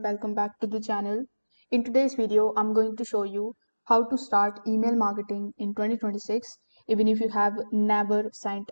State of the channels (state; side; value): inverted; both; correlation -1.00